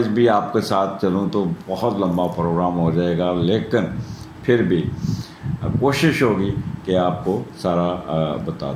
بھی آپ کے ساتھ چلوں تو بہت لمبا پروگرام ہو جائے گا, لیکن پھر بھی کوشش ہوگی کہ آپ کو سارا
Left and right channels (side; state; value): both; identical; correlation 1.00